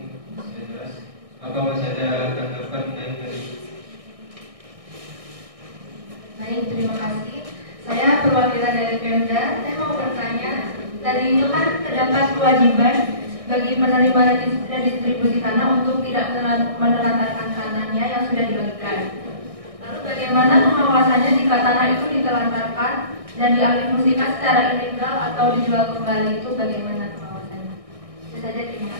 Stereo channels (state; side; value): late; left; 1.6 ms